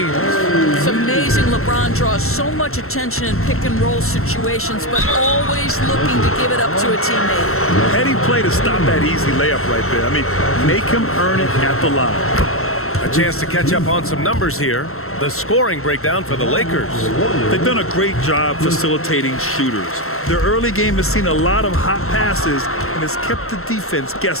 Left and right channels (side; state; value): right; late; 0.62 ms